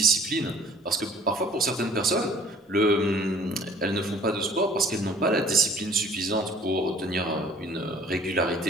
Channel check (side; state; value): both; normal; correlation 0.52